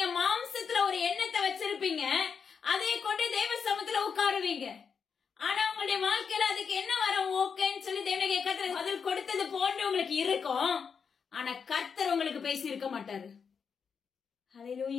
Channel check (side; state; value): right; quieter; 6.3 dB